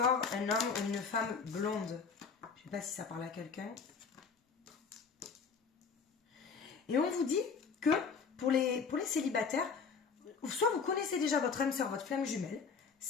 un homme ou une femme blonde. Je ne sais pas si ça parle à quelqu'un. Et on vous dit que pour les célibataires, soit vous connaissez déjà votre âme sœur, votre flamme jumelle,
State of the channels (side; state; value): right; quieter; 5.5 dB